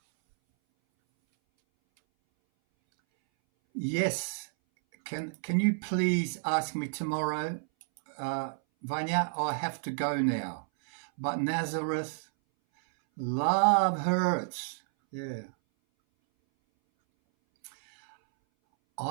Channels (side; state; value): left; silent; 57 dB below the other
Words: Yes. Can you please ask me tomorrow, Vanya? I have to go now. But Nazareth, love hurts. Yeah.